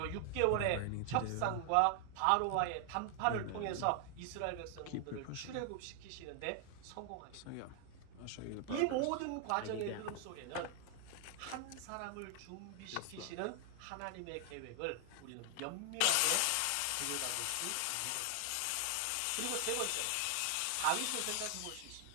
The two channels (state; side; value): different; both; correlation 0.00